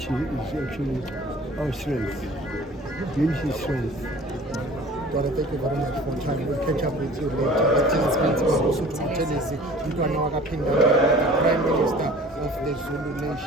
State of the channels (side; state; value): both; normal; correlation 0.46